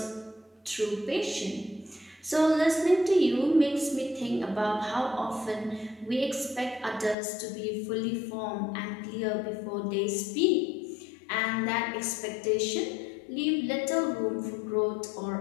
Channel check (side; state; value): right; drops out; at 7.2 s